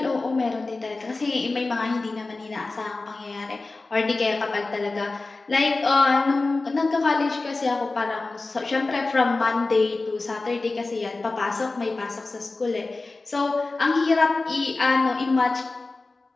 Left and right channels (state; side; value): quieter; right; 3.4 dB